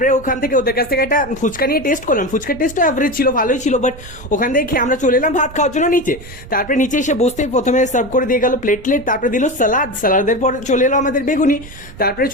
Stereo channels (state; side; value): noise; right; rumble, 17 dB below the sound